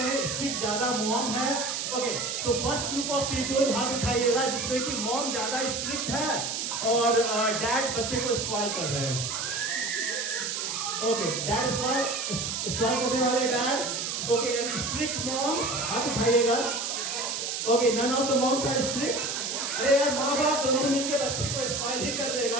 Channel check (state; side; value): noise; right; hiss, 2 dB below the sound